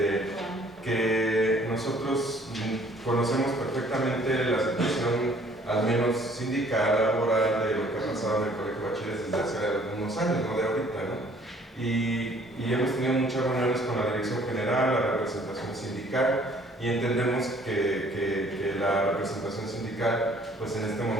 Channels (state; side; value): normal; both; correlation 0.58